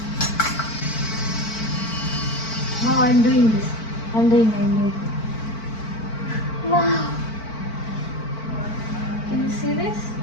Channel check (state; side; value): late; right; 4.5 ms